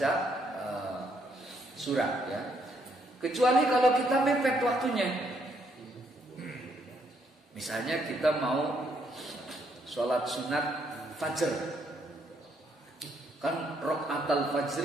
surat, ya. Kecuali kalau kita mepet waktunya. Misalnya kita mau sholat sunat fajr, kan rakaatul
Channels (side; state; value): both; normal; correlation 0.72